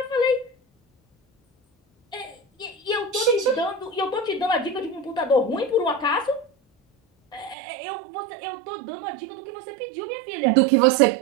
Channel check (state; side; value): drops out; left; at 7.6 s